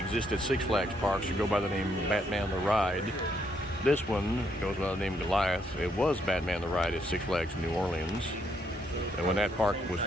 at Six Flags parks should go by the name Batman the Ride. This one goes by the name Goliath. It was Batman the Ride at Six Flags New Orleans. And when that park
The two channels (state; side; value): normal; both; correlation 0.74